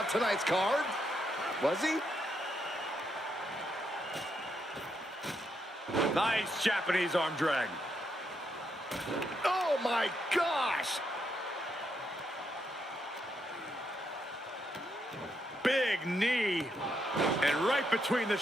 tonight's card. Was he? Nice Japanese arm drag. Oh my gosh! Big knee. And right between the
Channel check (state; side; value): normal; both; correlation 0.79